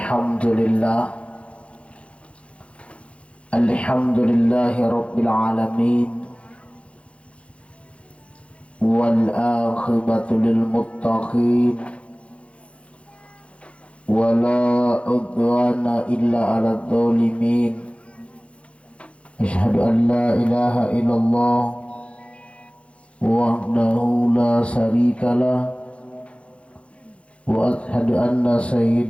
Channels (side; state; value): right; late; 0.061 ms